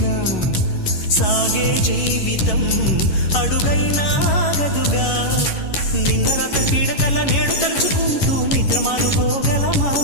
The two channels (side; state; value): right; late; 11 ms